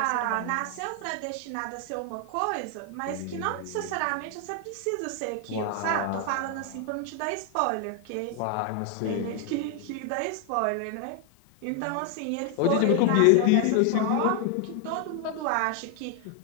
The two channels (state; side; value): different; both; correlation 0.00